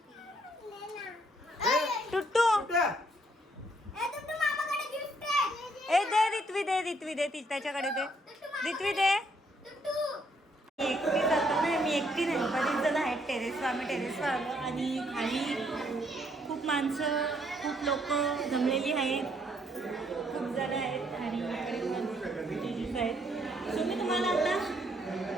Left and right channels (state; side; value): normal; both; correlation 0.69